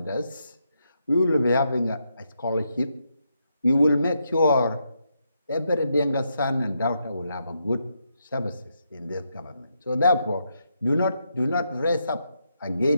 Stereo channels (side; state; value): both; inverted; correlation -0.81